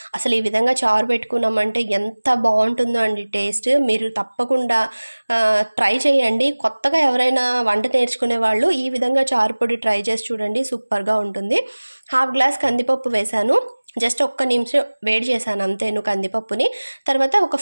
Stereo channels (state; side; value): inverted; both; correlation -1.00